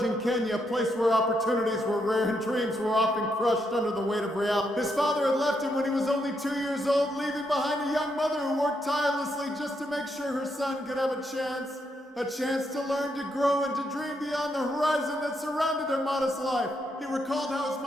in Kenya, a place where opportunities were rare and dreams were often crushed under the weight of reality. His father had left him when he was only 2 years old, leaving behind a young mother who worked tirelessly just to make sure her son could have a chance to learn, to grow, and to dream beyond the horizon that surrounded their modest life. He recalled how his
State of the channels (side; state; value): both; normal; correlation 0.79